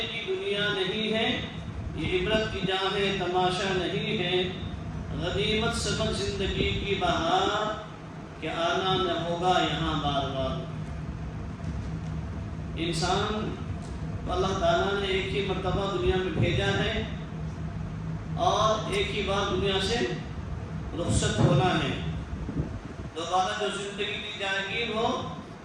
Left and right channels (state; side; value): identical; both; correlation 1.00